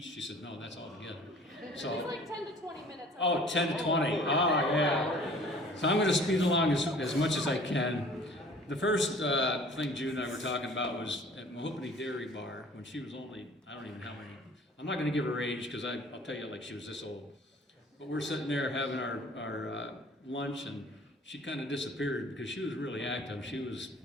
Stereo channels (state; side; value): normal; both; correlation 0.50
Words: She said, no, that's all together. So, it was like 10 to 20 minutes. Oh, 10 to 20. Oh, yeah. So I'm going to speed along as much as I can. The first thing Jude and I were talking about was at Mahogany Dairy Bar when she was only, I don't even know how many, I'm not going to give her age because I'll tell you like she was this old. But we're sitting there having our lunch and she kind of disappeared because she was really active. She was,